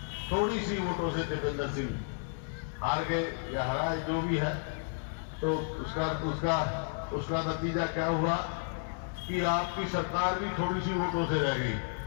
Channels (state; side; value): silent; right; digital silence